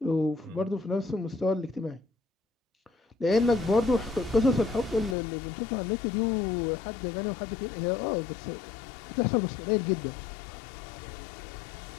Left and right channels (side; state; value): right; drops out; at 5.2 s